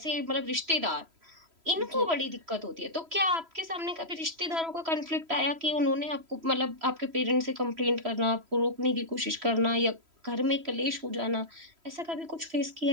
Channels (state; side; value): late; left; 3.0 ms